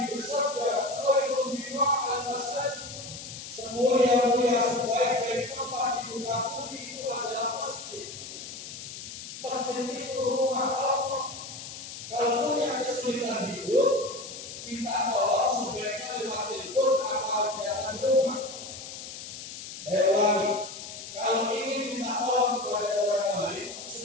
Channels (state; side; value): noise; left; hiss, 11 dB below the sound